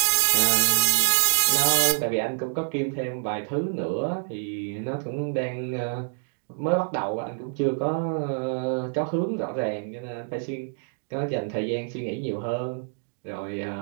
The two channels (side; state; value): left; silent; 61 dB below the other